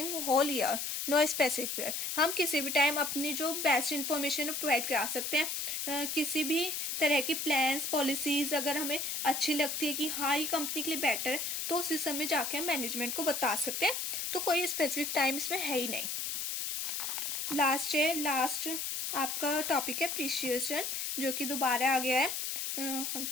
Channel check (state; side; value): noise; left; hiss, 2 dB below the sound